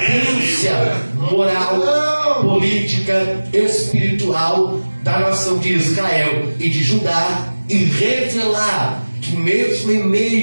moral, política, espiritual da nação de Israel e de Judá, e revelar que mesmo em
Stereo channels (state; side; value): inverted; both; correlation -1.00